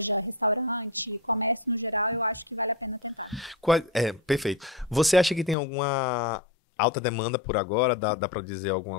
restaurante, comércio no geral, eu acho que vale a pena tentar. Perfeito. Você acha que tem alguma alta demanda por agora? Dá para dizer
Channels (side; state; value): right; drops out; at 5.6 s